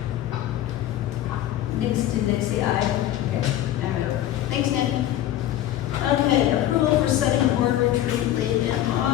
Did Nick say aye? Okay. All right. Thanks, Nick. Okay, approval for setting board retreat late in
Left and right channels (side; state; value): right; quieter; 12.9 dB